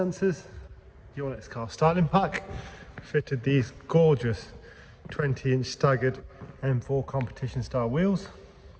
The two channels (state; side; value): identical; both; correlation 1.00